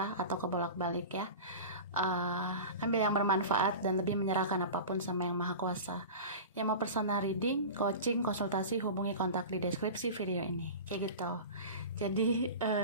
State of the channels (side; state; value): both; inverted; correlation -0.32